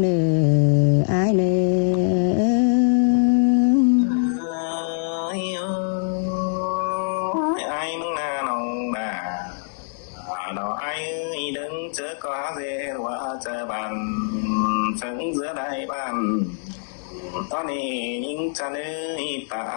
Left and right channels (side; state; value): right; silent; digital silence